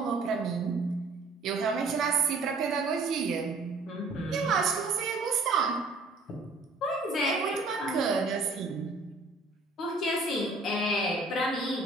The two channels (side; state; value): left; quieter; 3.2 dB